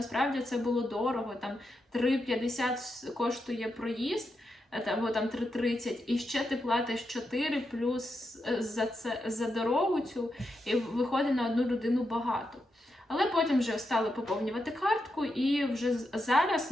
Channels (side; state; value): both; normal; correlation 0.85